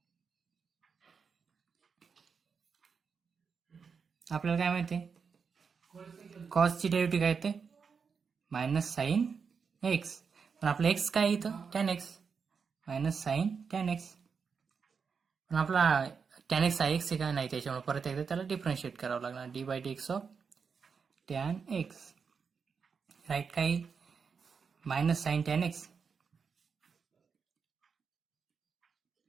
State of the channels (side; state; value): left; quieter; 5.8 dB